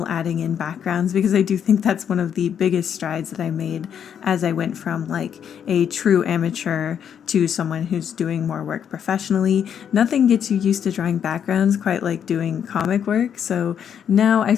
adding in backgrounds, because I do think that's one of the biggest strides that I made as I went from like a true amateur to someone who's doing more work professionally. Nothing gets you used to drawing backgrounds quite like doing comic work, so now I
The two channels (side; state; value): right; quieter; 8.4 dB